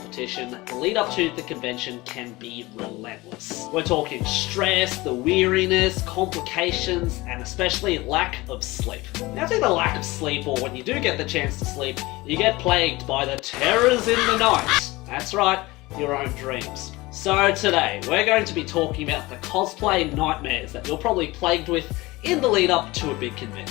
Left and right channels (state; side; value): quieter; right; 21.1 dB